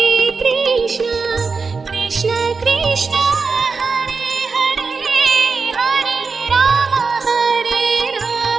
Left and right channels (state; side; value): quieter; left; 4.7 dB